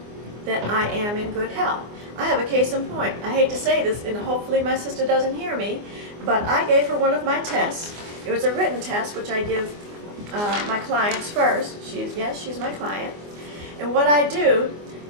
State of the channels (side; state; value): left; late; 24 ms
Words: that I am in good health. I have a case in point. I hate to say this, and hopefully my sister doesn't hear me, but I gave her one of my tests. It was a written test, which I give my clients first. She's my client. And what I do